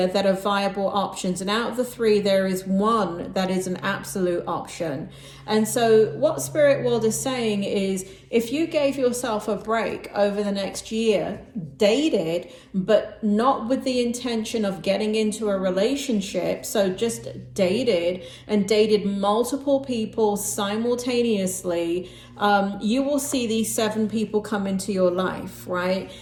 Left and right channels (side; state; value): both; identical; correlation 1.00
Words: that are viable options, and out of the 3 there is 1 that is an absolute option. And so what Spirit World is saying is, if you gave yourself a break over the next year, dated, but not with the intention of getting into a relationship, so just dated and dated multiple people simultaneously, you will see these 7 people come into your life, right?